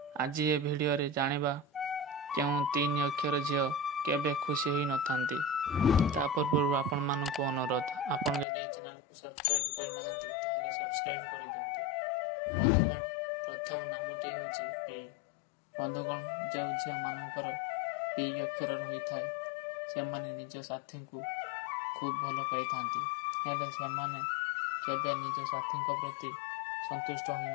आज ये वीडियो रे जानिबा केउ 3 अक्षर झियो केबे खुशी ही नथांती। तापर पूर्व आपण मानक अनुरोध, आपण जदि चैनल को सब्सक्राइब कर नाहंती ताहले सब्सक्राइब कर दियंतु। बंधुगण, प्रथम नामटी हेउची पी। बंधुगण, जो झियो मानकर पी अक्षर रही थाए से माने निज साथी को खूब भल पाई थांती, हेले से माने केबे निज साथी को प्रति संतुष्ट होई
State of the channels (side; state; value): right; drops out; at 8.5 s